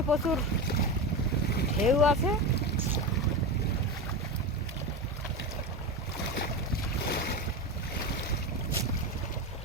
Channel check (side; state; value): both; normal; correlation 0.20